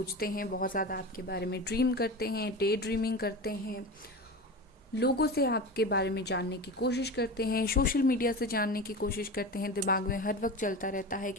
हैं, बहुत ज़्यादा आपके बारे में ड्रीम करते हैं, डे ड्रीमिंग करते हैं, लोगों से आपके बारे में जानने की कोशिश करते हैं, सोशल मीडिया से जानने की कोशिश करते हैं। दिमाग में हर वक्त चलता रहता है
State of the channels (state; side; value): normal; both; correlation 0.28